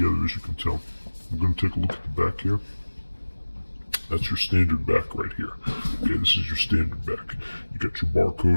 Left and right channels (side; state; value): both; inverted; correlation -1.00